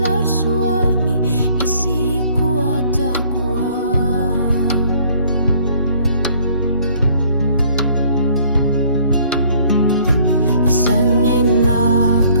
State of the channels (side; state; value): both; inverted; correlation -0.59